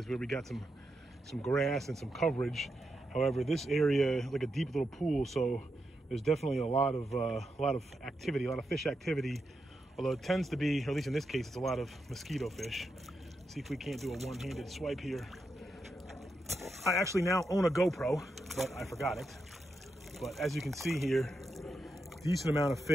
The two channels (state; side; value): normal; both; correlation 0.85